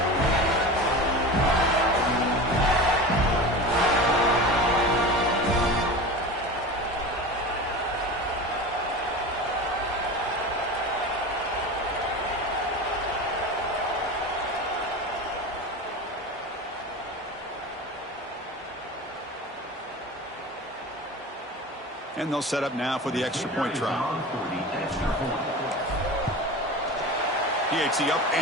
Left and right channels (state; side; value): normal; both; correlation 0.31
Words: And they'll set up now for the extra point try. PAT up